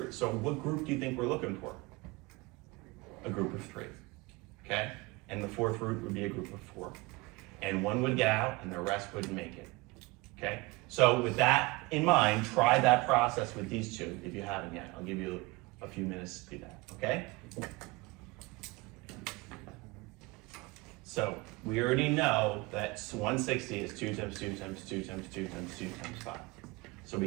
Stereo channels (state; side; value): quieter; left; 23.5 dB